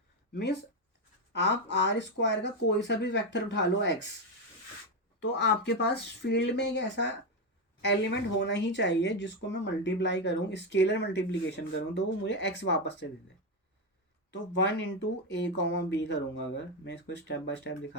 मीन्स आप आर स्क्वायर का कोई सा भी वेक्टर उठा लो x, तो आपके पास फील्ड में एक ऐसा एलिमेंट होना ही चाहिए जिसको मैं मल्टीप्लाई करूं, स्केलर मल्टीप्लीकेशन करूं, तो वो मुझे x वापस से दे दे। तो 1 × a, b करूंगा, अगर मैं इसको स्टेप बाय स्टेप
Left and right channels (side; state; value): both; normal; correlation 0.09